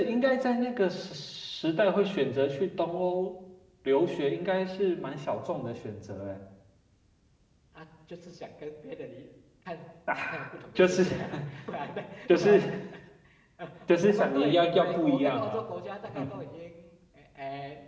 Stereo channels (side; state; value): both; identical; correlation 1.00